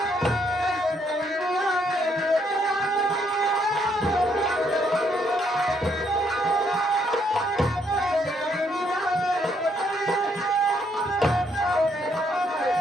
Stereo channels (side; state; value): both; normal; correlation 0.71